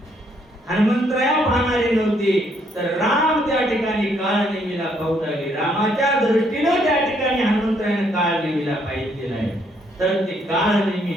हनुमंतराया पाहणारे नव्हते तर राम त्या ठिकाणी काळनेमीला पाहू लागले. रामाच्या दृष्टीने त्या ठिकाणी हनुमंतरायाने काळनेमीला पाहिलेलं आहे. तर ते काळनेमी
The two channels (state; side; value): normal; both; correlation 0.70